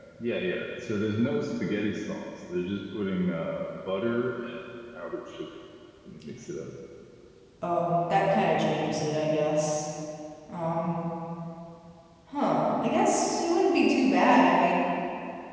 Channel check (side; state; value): both; identical; correlation 1.00